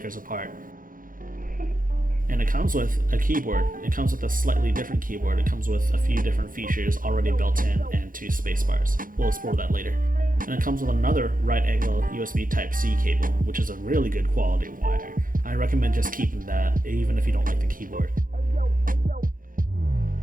apart. And it comes with a keyboard. It comes with a slightly different keyboard. It comes with a few different features already built in and 2 spacebars. We'll explore that later. And it comes with another right angle USB Type-C cable, which is a really good quality wire. I recommend just keeping that, even if you don't like the keyboard.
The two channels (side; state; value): left; late; 0.40 ms